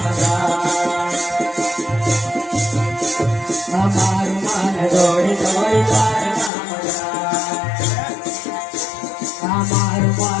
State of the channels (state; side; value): drops out; right; at 6.5 s